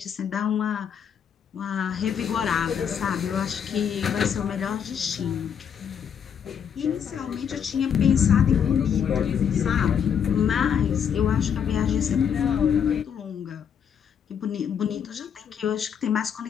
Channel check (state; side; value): quieter; right; 7.9 dB